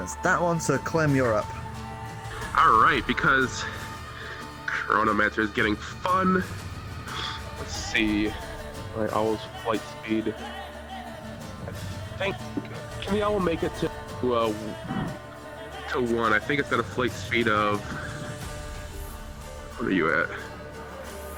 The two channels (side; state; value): both; identical; correlation 1.00